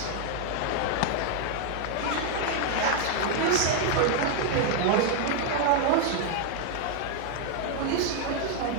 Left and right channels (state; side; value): different; both; correlation 0.00